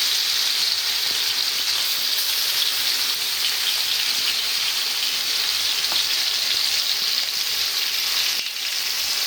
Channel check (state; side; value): identical; both; correlation 1.00